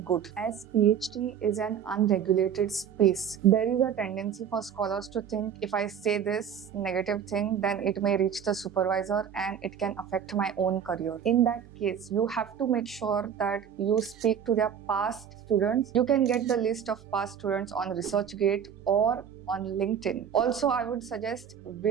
good. As PhD is an unregulated space, there is a tendency for scholars to think if I say this negative thing, then it may reach the supervisor and it can affect my own career. In that case, you have to make sure that you speak to their past students. You can get the list of past students on ResearchGate or on LinkedIn. Also, I would suggest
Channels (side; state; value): left; quieter; 8.3 dB